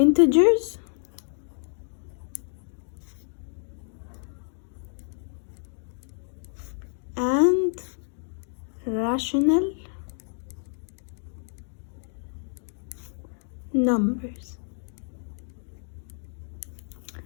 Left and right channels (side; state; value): right; silent; 59 dB below the other